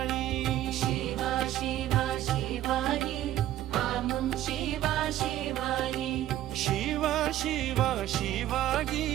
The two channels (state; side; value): quieter; left; 13.2 dB